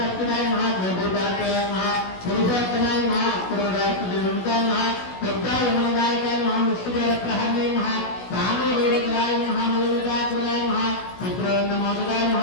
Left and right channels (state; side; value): late; right; 16 ms